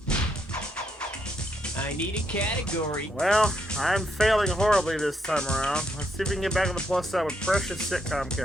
I need a category. Well, I'm failing horribly this time around. Let's see if we can get back on the plus side with precious sitcom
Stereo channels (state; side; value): normal; both; correlation 0.77